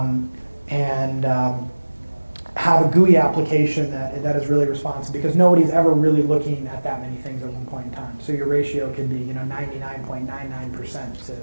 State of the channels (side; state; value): both; inverted; correlation -1.00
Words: have a GUI application that is really responsive, because nobody's ever really looking at that many things at one point in time. So your ratio could be 99.99%